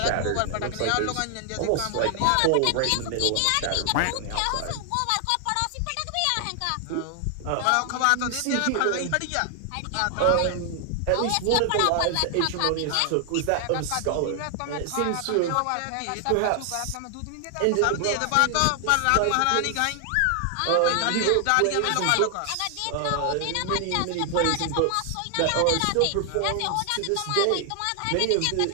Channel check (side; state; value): both; different; correlation 0.00